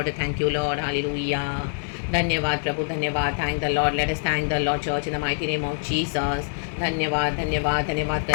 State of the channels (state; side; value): silent; right; digital silence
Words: Thank you, Lord. Hallelujah. धन्यवाद प्रभु, धन्यवाद. Thank the Lord. Let us thank the Lord church in the mighty name of Jesus. धन्यवाद, धन्यवाद, धन्यवाद